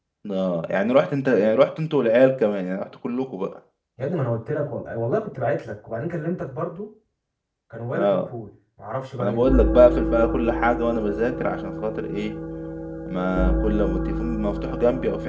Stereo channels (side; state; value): both; identical; correlation 1.00